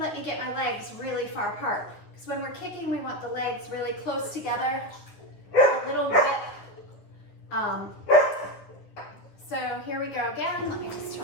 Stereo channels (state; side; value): late; right; 9.8 ms